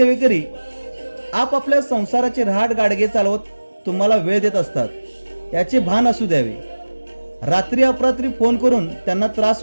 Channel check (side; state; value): both; inverted; correlation -1.00